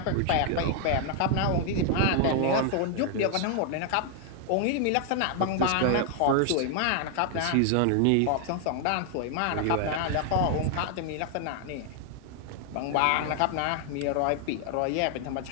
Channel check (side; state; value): both; different; correlation 0.00